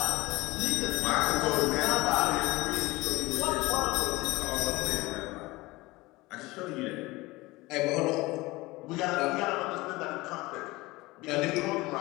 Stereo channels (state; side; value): quieter; right; 21.1 dB